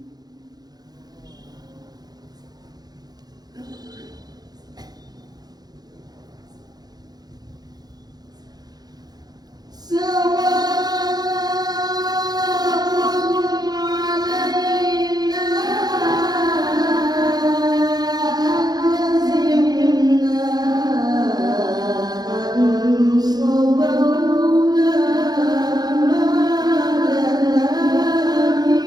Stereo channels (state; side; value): late; left; 0.19 ms